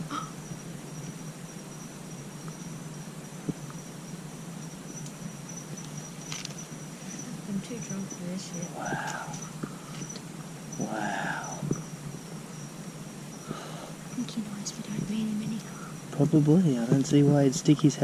I'm too drunk for this shit. Wow. Wow. I think he knows we don't mean him any harm. Probably. I don't see why he'd stick his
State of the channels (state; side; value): identical; both; correlation 1.00